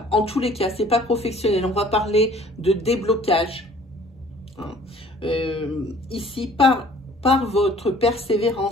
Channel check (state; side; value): normal; both; correlation 0.53